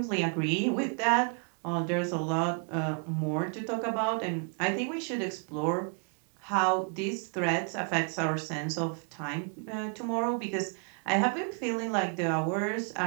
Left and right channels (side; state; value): left; quieter; 39.4 dB